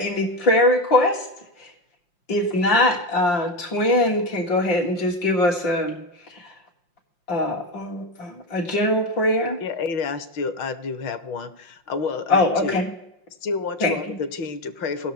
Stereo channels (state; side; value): late; right; 5.7 ms